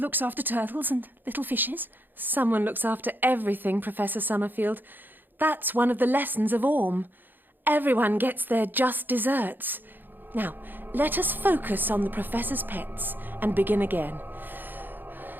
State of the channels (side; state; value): left; late; 0.092 ms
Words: after turtles and little fishes. Someone looks after everything, Professor Summerfield. That's one of the lessons of Orm. Everyone gets their just desserts. Now, let us focus on the Professor's pets and begin again.